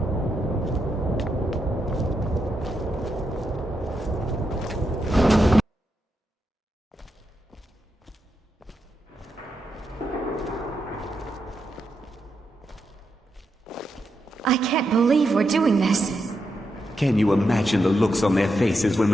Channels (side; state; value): both; normal; correlation 0.84